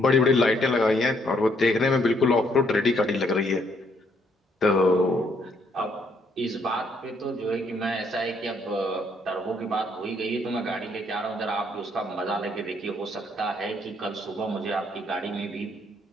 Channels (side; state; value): both; normal; correlation 0.70